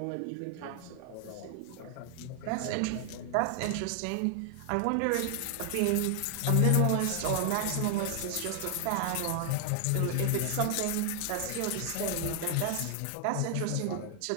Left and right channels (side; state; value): both; different; correlation 0.00